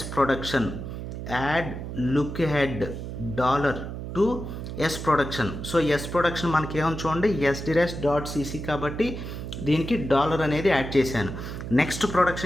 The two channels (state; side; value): noise; right; hum, 7 dB below the sound